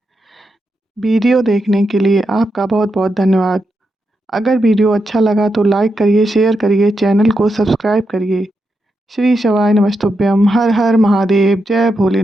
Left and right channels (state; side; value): normal; both; correlation 0.85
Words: वीडियो देखने के लिए आपका बहुत बहुत धन्यवाद। अगर वीडियो अच्छा लगा तो लाइक करिए, शेयर करिए, चैनल को सब्सक्राइब करिए। श्री शिवाय नमस्तुभ्यम। हर हर महादेव। जय